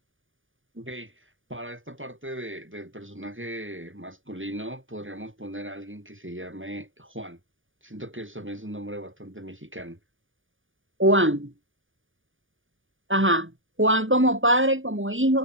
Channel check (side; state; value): left; late; 0.57 ms